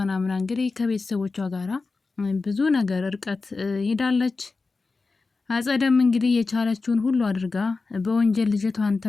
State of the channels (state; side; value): quieter; right; 4.0 dB